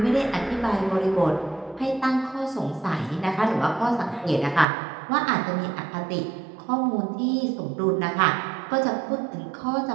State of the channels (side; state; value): left; drops out; at 4.7 s